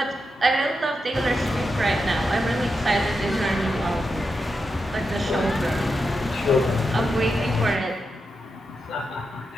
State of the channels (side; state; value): both; normal; correlation 0.87